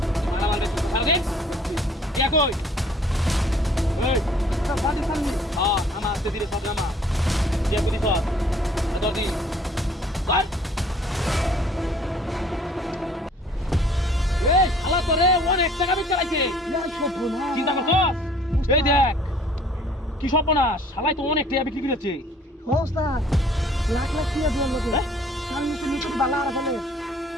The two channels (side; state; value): both; normal; correlation 0.56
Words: মারা মারবে তুই সারা দিন ইয়া কই ওই সব বাড়ি সামনে হ্যাঁ আমার আস্তে ধীরে সব নামা যে বুঝি সব দরদি কর এই শালা তোরে অনেক টাকা বিক্রি চালাইছে চিন্তা করছস এই দেখ কি সর্বনাশ শালাই তো অনেক টাকা বিক্রি করেছে ওস্তাদ লাখ লাখ টাকা দিলাম লোকে সামনে তো নিচে বালা আর ফেলে